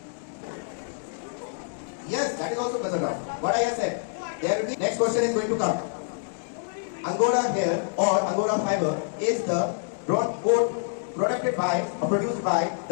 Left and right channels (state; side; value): silent; right; digital silence